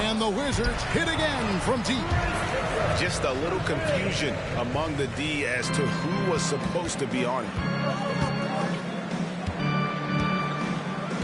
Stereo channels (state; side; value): identical; both; correlation 1.00